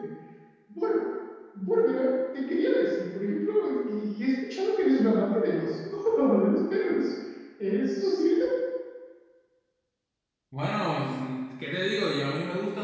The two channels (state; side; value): identical; both; correlation 1.00